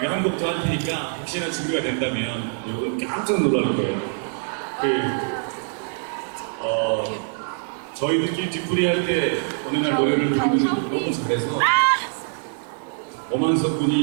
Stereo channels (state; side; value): silent; left; 56 dB below the other